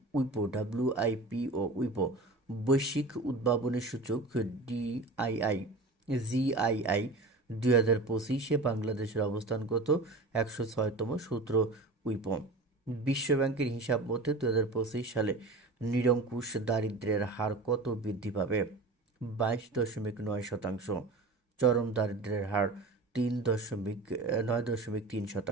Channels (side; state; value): left; quieter; 3.3 dB